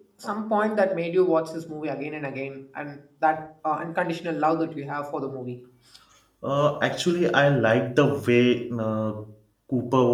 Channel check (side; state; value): both; identical; correlation 1.00